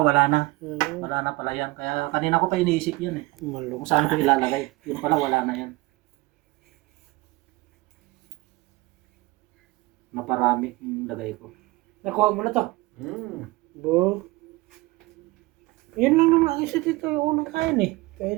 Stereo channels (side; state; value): left; quieter; 21.5 dB